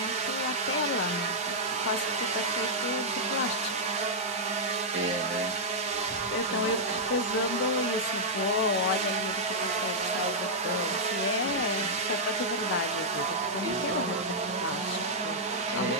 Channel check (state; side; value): normal; both; correlation -0.07